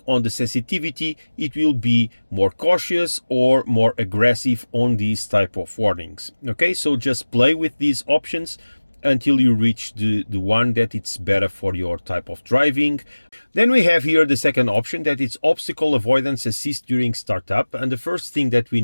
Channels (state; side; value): inverted; both; correlation -1.00